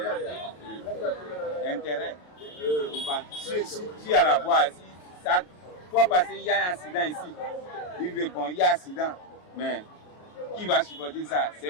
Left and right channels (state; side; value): late; right; 23 ms